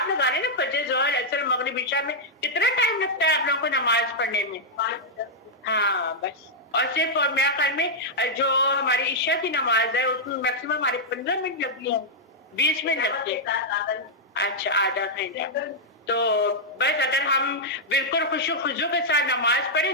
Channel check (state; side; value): normal; both; correlation -0.06